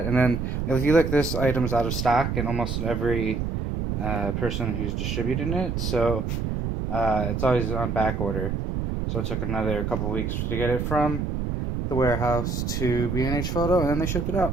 And then if you look, this item's out of stock in almost every person who's distributing it. So it's always on back order. So it took another couple weeks to get it from the warehouse to B&H Photo, and then they shipped it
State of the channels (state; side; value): noise; right; rumble, 1 dB below the sound